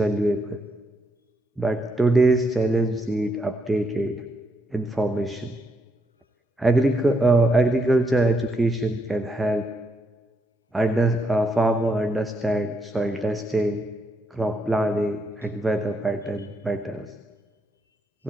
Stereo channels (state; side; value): normal; both; correlation 0.78